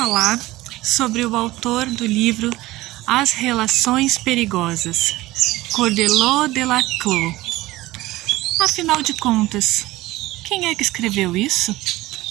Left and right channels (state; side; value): quieter; left; 18.1 dB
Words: sobre o autor do livro As Relações Perigosas, Cordelot de Laclos. Afinal de contas, quem é que escreveu isso?